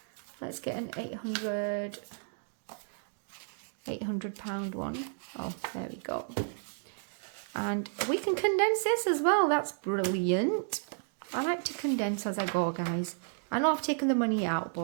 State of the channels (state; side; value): silent; left; digital silence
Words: let's get an £800 one. Oh, there we go. And we can condense this as well. That's brilliant. I like to condense as I go, guys. I know I've taken the money out,